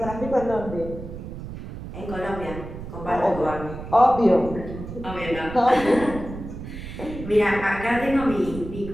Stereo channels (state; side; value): noise; right; rumble, 10 dB below the sound